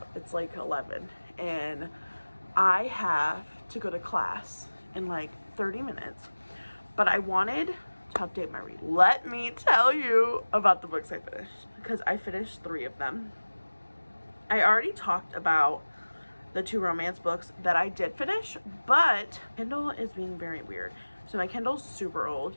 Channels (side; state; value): both; inverted; correlation -1.00